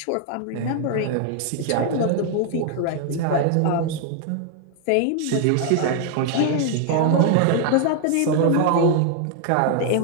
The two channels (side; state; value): both; different; correlation 0.00